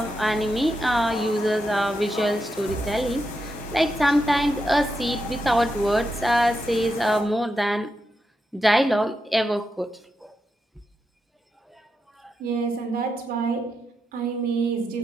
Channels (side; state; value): both; normal; correlation 0.85